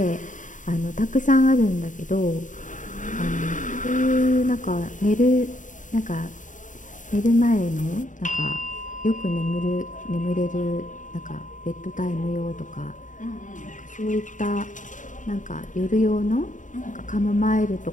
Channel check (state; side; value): late; right; 0.37 ms